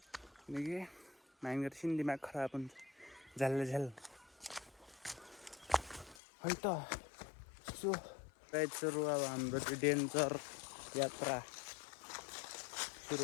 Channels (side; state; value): right; drops out; at 6.2 s